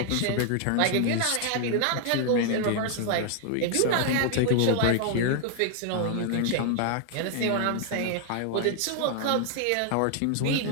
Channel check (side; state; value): both; different; correlation 0.00